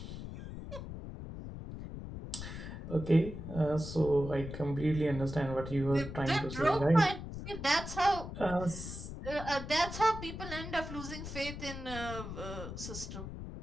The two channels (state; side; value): noise; left; rumble, 9 dB below the sound